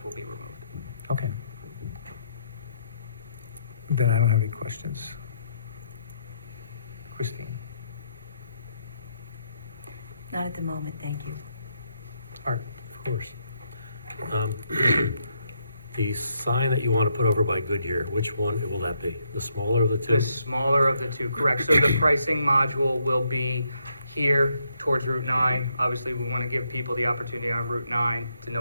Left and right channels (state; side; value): inverted; both; correlation -0.76